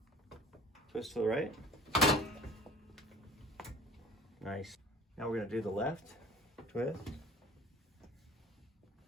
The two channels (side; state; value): both; normal; correlation 0.46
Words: Twist to the right. Nice. Now we're going to do the left. Twist.